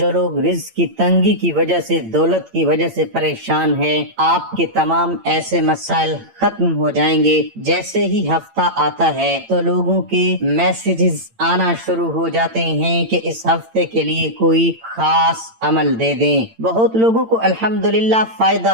लोग रिज़्क की तंगी की वजह से, दौलत की वजह से परेशान है, आपके तमाम ऐसे मसाइल खत्म हो जाएंगे। जैसे ही हफ्ता आता है तो लोगों के मैसेजेस आना शुरू हो जाते हैं कि इस हफ्ते के लिए कोई खास अमल दे दें। बहुत लोगों को अल्हम्दुलिल्लाह फायदा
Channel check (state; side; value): late; left; 8.9 ms